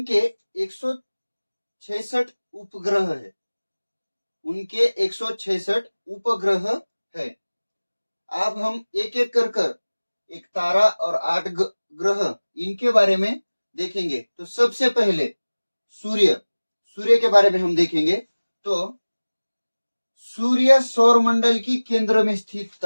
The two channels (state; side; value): inverted; both; correlation -1.00